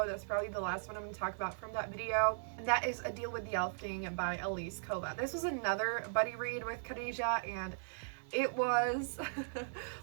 That's probably the last one I'm going to talk about from that video, and that is A Deal with the Elf King by Elise Kova. This was another buddy read with Khadijah, and it was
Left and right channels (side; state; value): left; silent; digital silence